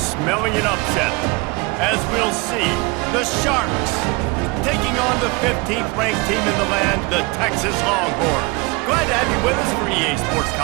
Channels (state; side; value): quieter; left; 26.4 dB